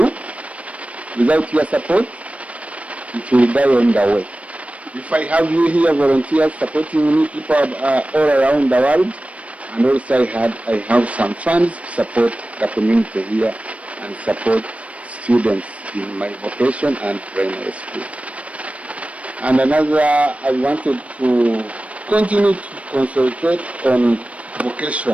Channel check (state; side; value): late; left; 0.064 ms